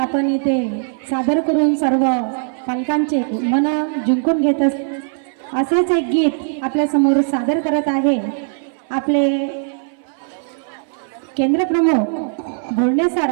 इथे सादर करून सर्व पालकांचे मन जिंकून घेत असेच एक गीत आपल्या समोर सादर करत आहे आपले केंद्र प्रमुख भोंडे सर.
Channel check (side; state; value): left; silent; 61 dB below the other